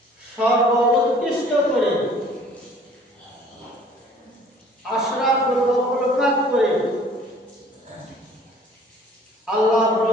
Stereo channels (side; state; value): both; normal; correlation 0.53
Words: সর্বোৎকৃষ্ট করে আশরাফুল মাখলুকাত করে আল্লাহ